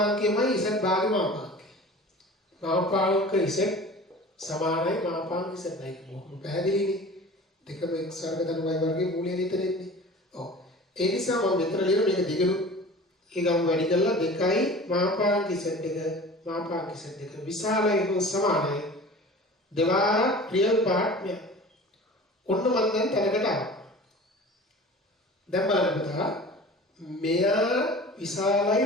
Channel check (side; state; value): both; normal; correlation 0.40